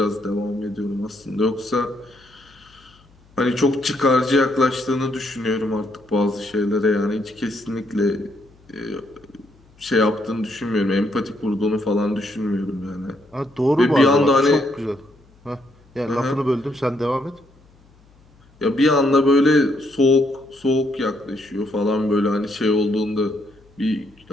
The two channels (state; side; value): noise; left; hum, 29 dB below the sound